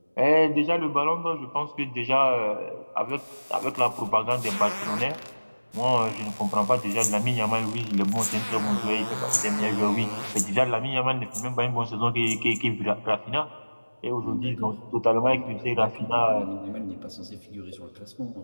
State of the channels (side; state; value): both; inverted; correlation -1.00